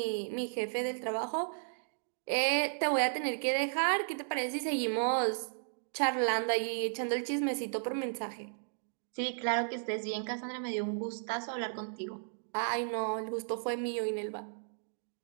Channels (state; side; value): silent; left; digital silence